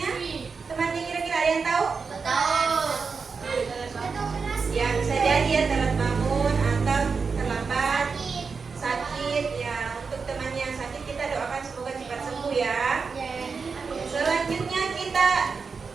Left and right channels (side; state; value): left; quieter; 5.1 dB